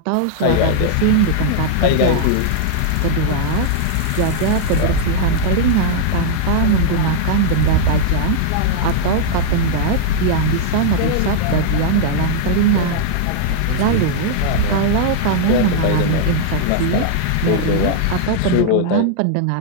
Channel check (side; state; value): both; different; correlation -0.01